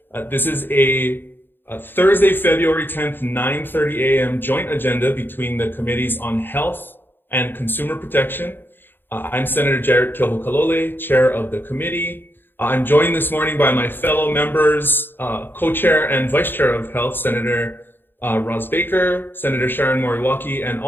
This is a Thursday, February 10th, 9:30 a.m. joint agenda between the Committees on Health and Consumer Protection. I'm Senator Jarrett Kehokalole, chair of the committee. I'm joined this morning by my fellow members, co-chair and vice chair of Health, Senator Roz Baker, Senator Sharon Moriwaki, and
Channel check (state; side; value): late; right; 0.098 ms